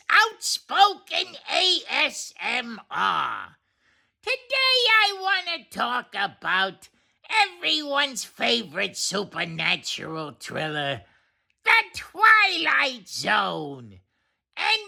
Outspoken A.S.M.R. Today I want to talk about everyone's favorite supernatural thriller, The Twilight Zone,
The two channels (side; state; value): both; identical; correlation 1.00